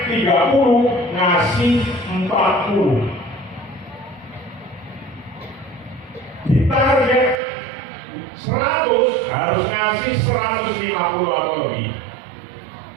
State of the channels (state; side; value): drops out; left; at 7.4 s